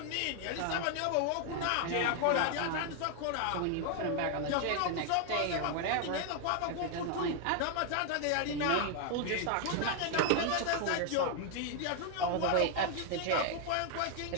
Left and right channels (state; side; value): different; both; correlation 0.00